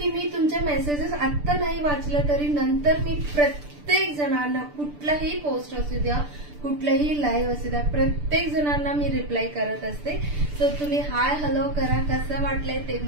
मी तुमच्या मेसेजेस आत्ता नाही वाचलं तरी नंतर मी प्रत्येक जणांना, कुठलाही पोस्ट असू द्या, कुठलाही लाईव्ह असू द्या, प्रत्येक जणांना मी रिप्लाय करत असते. सो तुम्ही हाय हॅलो करा, कसं वाटलंय ते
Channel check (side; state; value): left; late; 6.8 ms